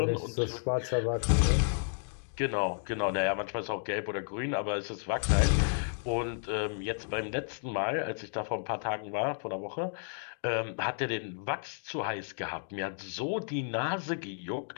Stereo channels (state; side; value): silent; right; digital silence